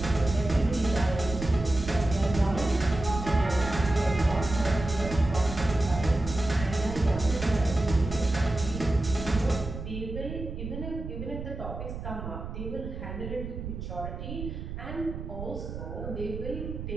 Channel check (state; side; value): noise; right; rumble, 7 dB below the sound